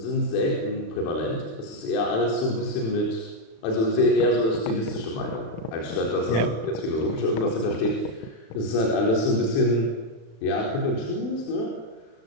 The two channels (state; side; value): late; right; 36 ms